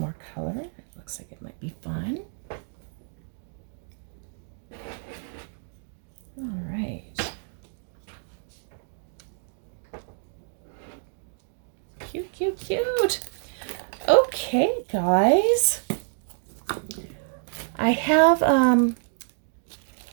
color. It looks like it might be fun. All right. Cute, cute, cute. Okay, guys. I have, in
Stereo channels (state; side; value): silent; left; digital silence